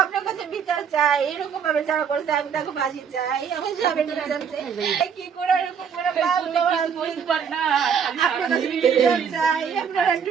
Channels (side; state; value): left; quieter; 7.2 dB